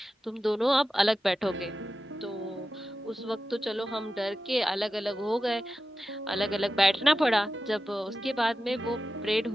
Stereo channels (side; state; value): both; normal; correlation 0.92